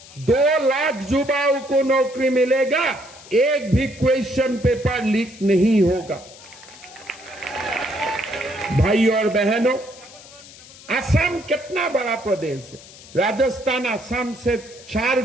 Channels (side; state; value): left; noise; hiss, 20 dB below the sound